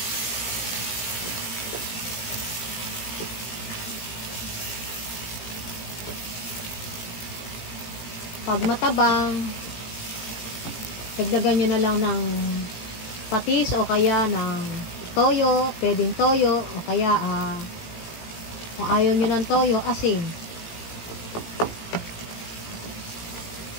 Pag matabang, dagdagan nyo na lang ng patis o kaya ng toyo, pwedeng toyo o kaya kung ayaw nyo ng toyo, asin.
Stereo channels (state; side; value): late; right; 18 ms